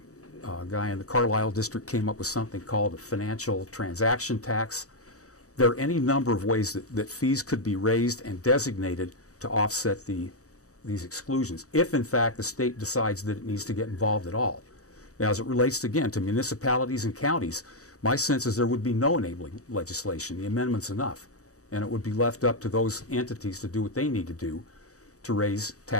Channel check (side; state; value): right; late; 0.66 ms